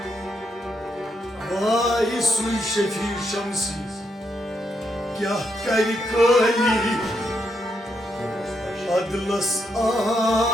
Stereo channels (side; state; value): both; normal; correlation 0.79